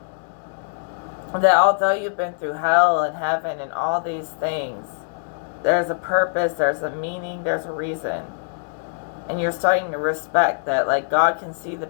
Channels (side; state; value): right; silent; digital silence